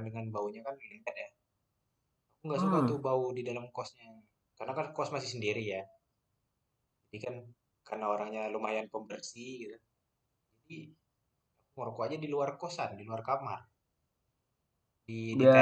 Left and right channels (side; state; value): both; identical; correlation 1.00